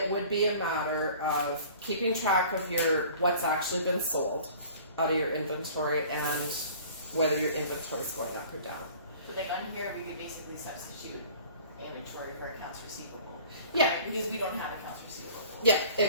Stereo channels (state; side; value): inverted; both; correlation -0.47